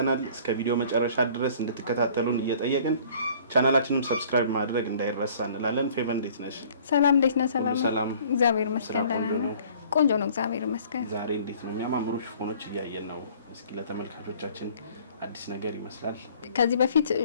እስከ ቪዲዮ መጨረሻ ድረስ እንድትከታተሉን እየጠየቅን ቻናላችንን ሰብስክራይብ ማድረግ እንዳይረሳ እንላለን። ፌቨን እንዴት ነሽ? ሰላም እንዴት ነህ? ሰላም እግዚአብሔር ይመስገን ደህና ነኝ። ቆንጆ ነው እግዚአብሔር ይመስገን። ዛሬ እንዴት ነው የሚያማምሩ ሽፎኖች እያየን ነው። እስኪ ለተመልካቾቻችን አዲስ ነገር ይመስላል። ከዚህ በፊት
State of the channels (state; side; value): inverted; both; correlation -0.53